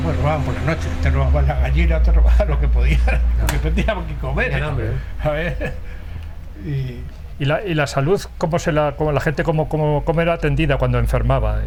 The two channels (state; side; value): identical; both; correlation 1.00